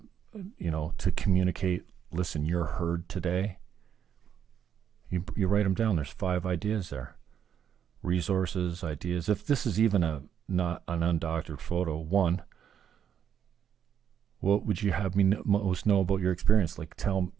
to communicate, listen, you're heard today. You write them down. There's 5 ideas there. Resources, ideas. If this is even not an undoctored photo, 1, what would you have me most know about your experience? Like, tell,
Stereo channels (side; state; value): left; quieter; 8.7 dB